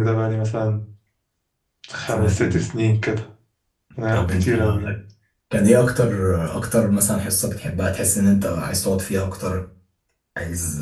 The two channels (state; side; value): identical; both; correlation 1.00